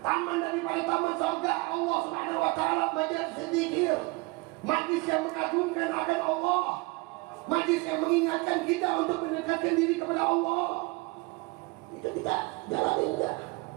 daripada taman surga Allah Subhanahu wa taala, majlis zikir, majlis yang mengagungkan akan Allah, majlis yang mengingatkan kita untuk mendekatkan diri kepada Allah. Itu kita jalanin enggak?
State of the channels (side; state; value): left; quieter; 25.5 dB